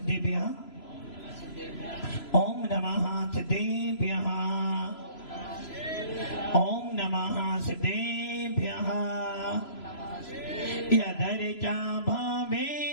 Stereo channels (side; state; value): right; late; 3.0 ms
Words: ओम नमः सिद्धेभ्यः, ओम नमः सिद्धेभ्यः। यदर्चा